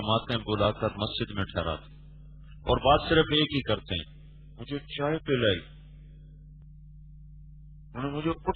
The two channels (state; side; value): identical; both; correlation 1.00